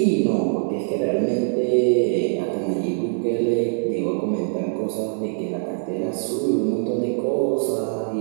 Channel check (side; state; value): left; silent; digital silence